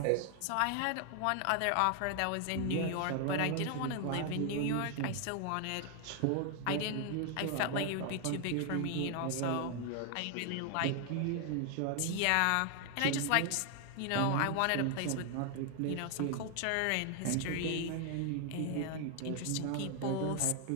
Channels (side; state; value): both; different; correlation 0.00